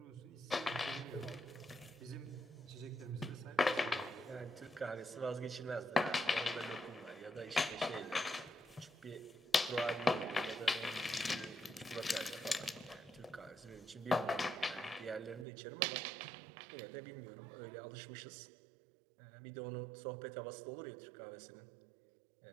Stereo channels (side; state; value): left; drops out; at 15.5 s